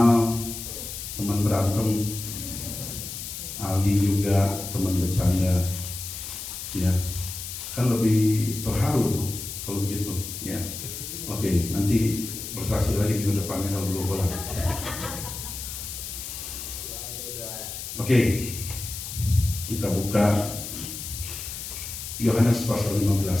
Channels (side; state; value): left; noise; hiss, 8 dB below the sound